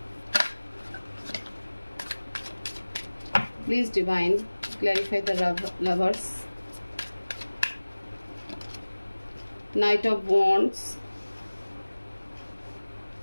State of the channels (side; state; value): both; inverted; correlation -1.00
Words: please divine, clarify the lovers, Knight of Wands,